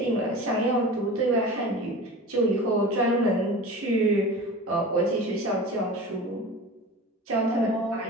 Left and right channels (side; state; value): both; normal; correlation 0.35